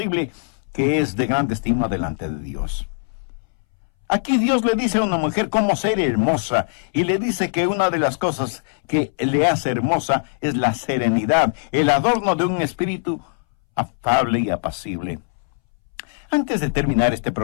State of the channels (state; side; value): silent; right; 63 dB below the other